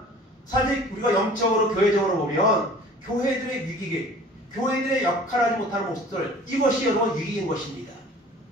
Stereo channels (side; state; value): both; normal; correlation 0.46